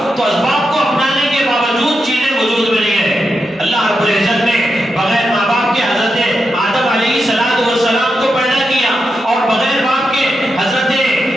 تو اسباب کو اپنانے کے باوجود چیزیں وجود میں نہیں ہے۔ اللہ رب العزت نے بغیر ماں باپ کے حضرت آدم علیہ السلام کو پیدا کیا، اور بغیر باپ کے حضرت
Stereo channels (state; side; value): normal; both; correlation 0.87